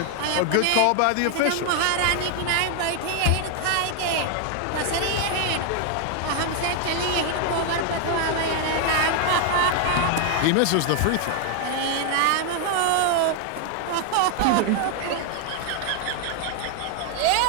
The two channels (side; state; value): both; different; correlation 0.00